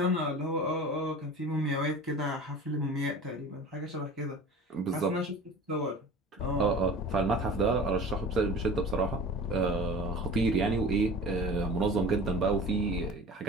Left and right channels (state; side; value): normal; both; correlation 0.39